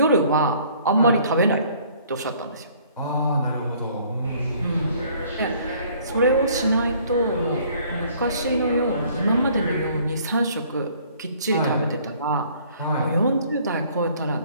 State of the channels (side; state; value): both; inverted; correlation -0.58